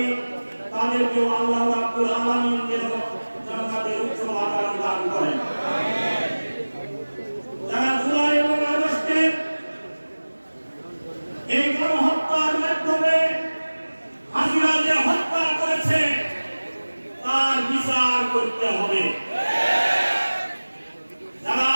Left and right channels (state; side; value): inverted; both; correlation -1.00